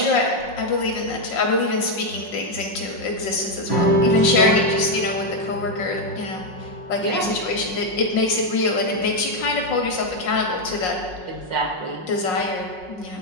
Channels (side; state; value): right; late; 5.5 ms